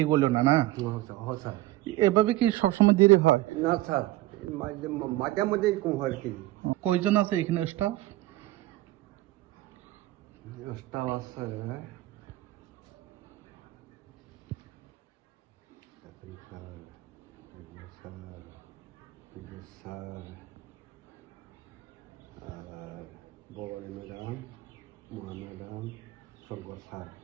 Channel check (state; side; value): quieter; left; 16.9 dB